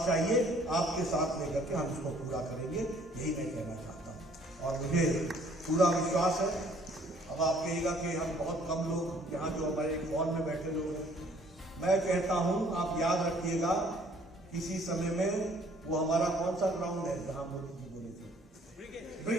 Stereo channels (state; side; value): normal; both; correlation 0.59